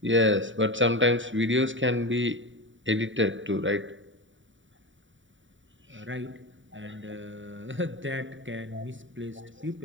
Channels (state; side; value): late; left; 0.55 ms